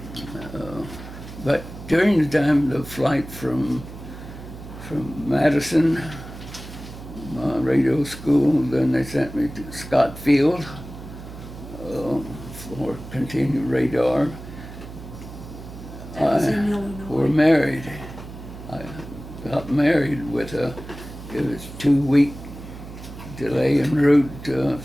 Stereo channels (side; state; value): right; noise; hum, 13 dB below the sound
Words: but during the time of the flight from from Madison, my radio school. Then they sent me to Scott Field for continued radar. That was in We're Illinois. married. I got married with it was 2 week delay en route